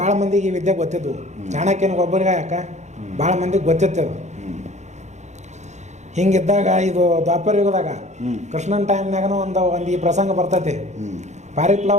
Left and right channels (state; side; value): late; left; 0.33 ms